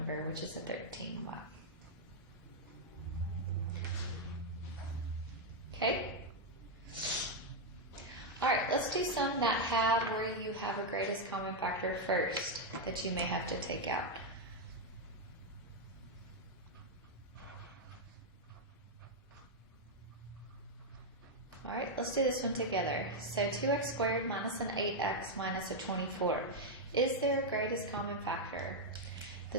which is a 13y. Okay? Alright, let's do some that have where you have a greatest common factor first that you may have to take out. Alright, let's do this one together. So 2x squared minus an 8x minus a 24. Is there a greatest common factor?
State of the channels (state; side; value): normal; both; correlation 0.00